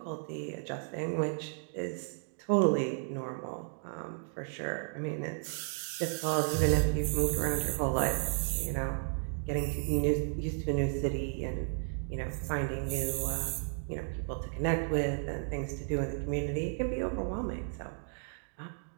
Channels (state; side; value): silent; left; 55 dB below the other